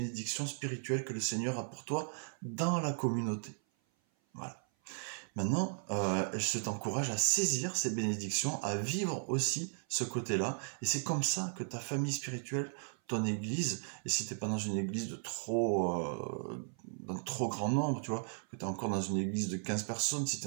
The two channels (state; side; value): silent; left; 54 dB below the other